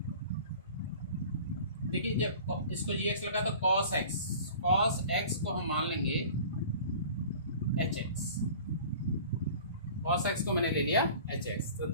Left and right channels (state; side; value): inverted; both; correlation -0.43